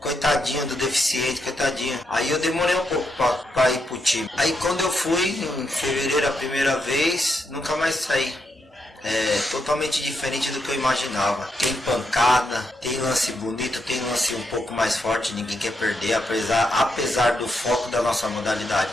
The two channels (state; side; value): normal; both; correlation 0.81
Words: do deficiente, coitadinho. Aí eu demorei um pouco pra ir pro time. Aí quando eu fui, em fevereiro a primeira vez, nunca mais saí. É totalmente diferente do que eu imaginava. Tem pancada, tem lance bonito, tem lance um pouco mais forte, ninguém quer perder, apesar do foco da nossa modalidade